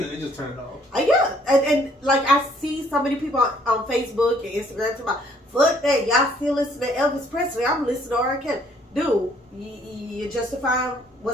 so you just turn it off. Yeah, and like I see so many people on Facebook and Instagram talking about, fuck that, y'all still listen to Elvis Presley. I'm listening to R. Kelly. Dude, you justifying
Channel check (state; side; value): normal; both; correlation 0.63